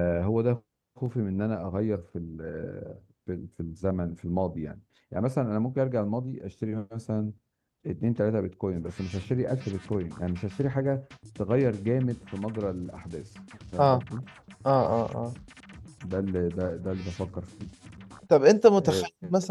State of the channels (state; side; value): identical; both; correlation 1.00